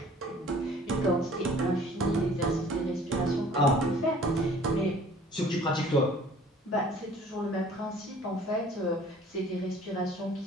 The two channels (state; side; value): normal; both; correlation 0.51